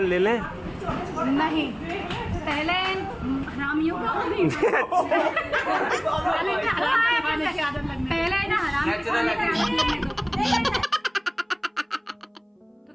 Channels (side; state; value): both; identical; correlation 1.00